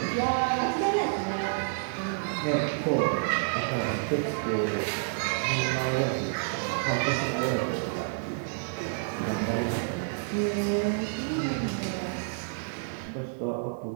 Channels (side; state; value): left; silent; 59 dB below the other